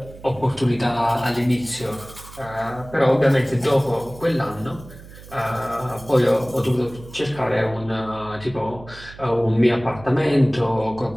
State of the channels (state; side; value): noise; right; hum, 18 dB below the sound